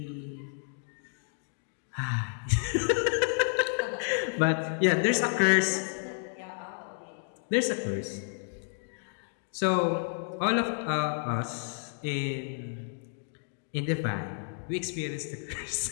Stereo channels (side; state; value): right; silent; digital silence